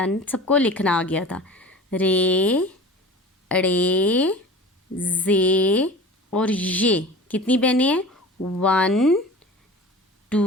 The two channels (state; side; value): normal; both; correlation 0.38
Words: सबको लिखना आ गया था। रे अड़े जे और ये कितनी बहनें हैं? 1